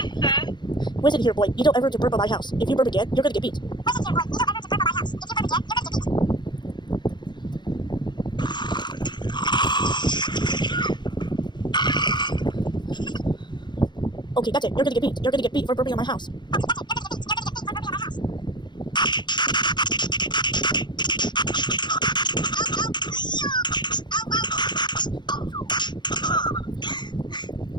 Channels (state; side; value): late; right; 0.21 ms